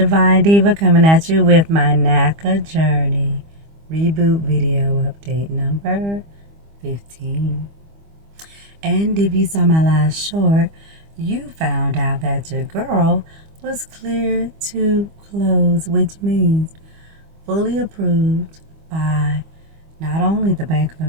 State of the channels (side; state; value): left; late; 25 ms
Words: Diva coming at you with my NACA Journey Reboot video update number 15. And if you saw my last short, you found out that your girl was cleared to close, which means fully approved by not only the Bank of